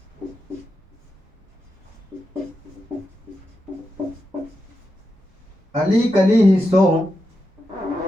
अली कली ही सो,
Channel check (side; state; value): both; normal; correlation 0.87